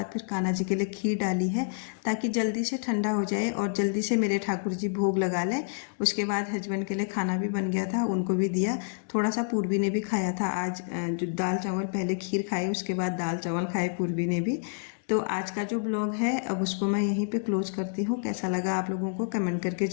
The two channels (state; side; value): silent; right; digital silence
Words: फिर कान्हा जी के लिए खीर डाली है ताकि जल्दी से ठंडा हो जाए और जल्दी से मेरे ठाकुर जी भोग लगा लें। उसके बाद हस्बैंड के लिए खाना भी बन गया था, उनको भी दिया। थोड़ा सा पूर्वी ने भी खाया था आज, जो दाल चावल पहले खीर खाए उसके बाद दाल चावल खाए पूर्वी ने भी। तो आज का जो ब्लॉग है अब उसको मैं यहीं पे क्लोज करती हूँ। कैसा लगा आप लोगों को कमेंट करके